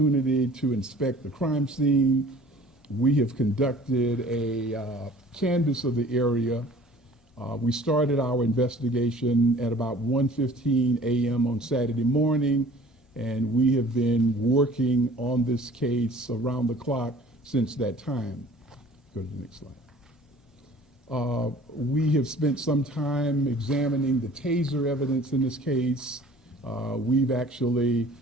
to inspect the crime scene. We have conducted a canvass of the area. We started our investigation at about 1:15 a.m. on Saturday morning, and we have been working on this case around the clock since that time. Go to the next slide. We have spent some time examining the taser evidence in this case. We've actually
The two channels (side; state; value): both; normal; correlation 0.49